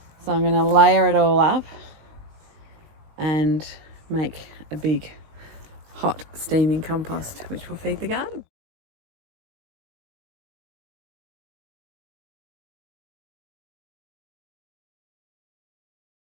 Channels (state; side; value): late; left; 19 ms